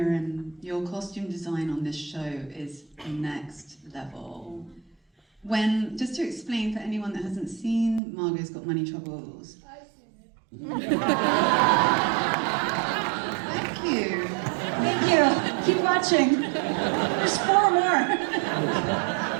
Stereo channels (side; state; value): left; drops out; at 8.0 s